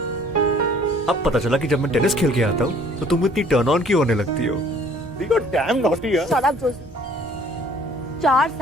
अब पता चला कि जब मैं टेनिस खेल के आता हूँ तो तुम इतनी टर्न ऑन क्यों होने लगती हो? Shut up, Josie. 4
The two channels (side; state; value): both; normal; correlation 0.56